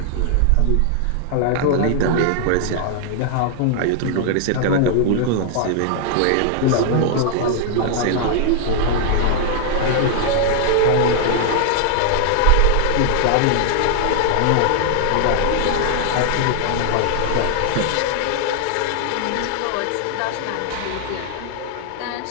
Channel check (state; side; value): different; both; correlation 0.00